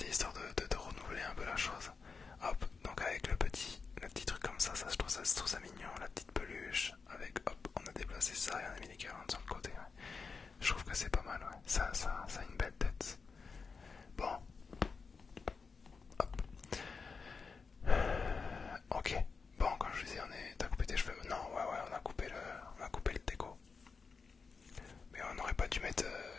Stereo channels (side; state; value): right; quieter; 4.9 dB